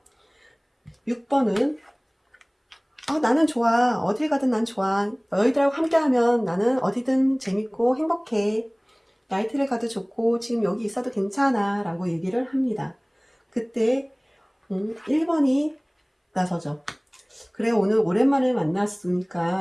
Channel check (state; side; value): identical; both; correlation 1.00